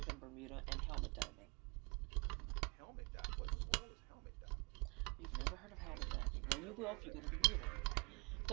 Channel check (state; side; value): quieter; left; 31.6 dB